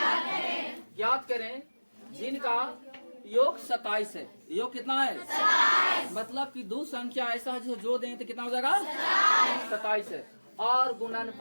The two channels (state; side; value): inverted; both; correlation -1.00